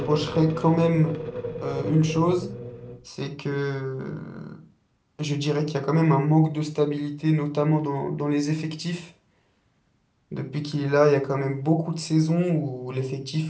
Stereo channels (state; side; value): identical; both; correlation 1.00